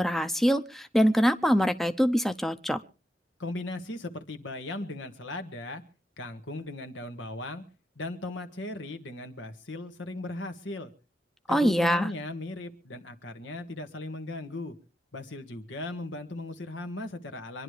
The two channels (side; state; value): both; normal; correlation 0.86